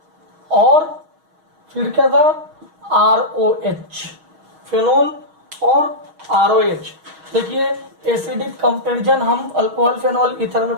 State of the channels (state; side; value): late; left; 6.3 ms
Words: और फिर क्या था ROH, फेनोल और ROH। देखिए एसिडिक कंपैरिजन हम अल्कोहल फेनोल ईथर